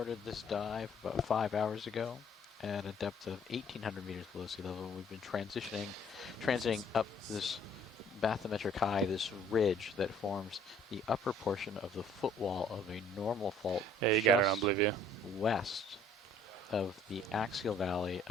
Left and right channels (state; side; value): normal; both; correlation 0.58